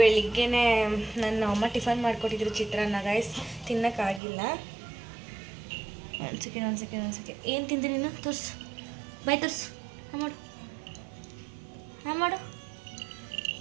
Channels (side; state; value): left; drops out; at 4.2 s